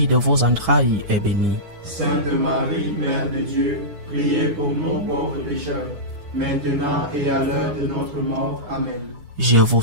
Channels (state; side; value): late; left; 9.1 ms